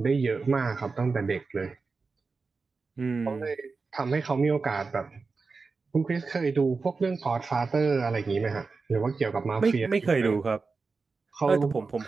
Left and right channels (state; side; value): quieter; left; 4.3 dB